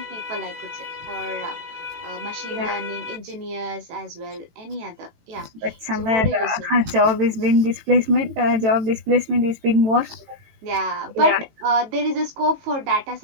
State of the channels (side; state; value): left; late; 18 ms